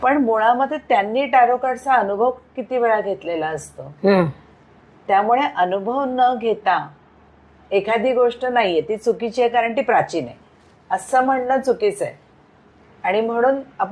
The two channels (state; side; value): identical; both; correlation 1.00